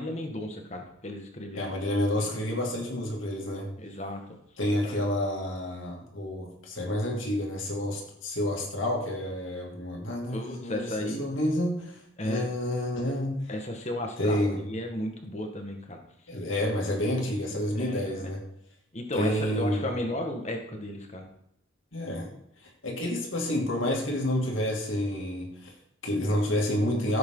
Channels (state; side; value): normal; both; correlation 0.53